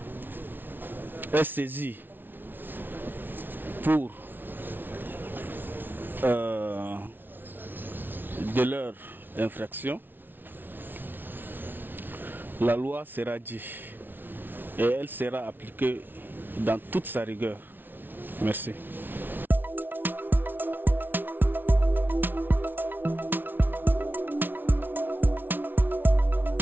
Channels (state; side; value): late; left; 0.095 ms